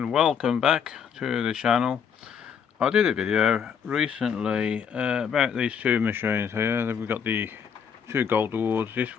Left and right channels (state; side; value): quieter; right; 7.3 dB